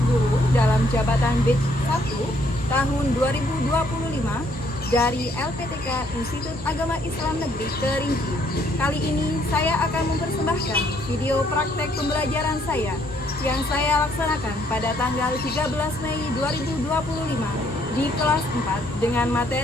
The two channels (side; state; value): both; normal; correlation 0.67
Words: guru dalam jabatan Batch 1 tahun 2025 dari LPTK Institut Agama Islam Negeri Kerinci. Kali ini saya akan mempersembahkan video praktek pembelajaran saya yang saya laksanakan pada tanggal 13 Mei 2025 di kelas 4 dengan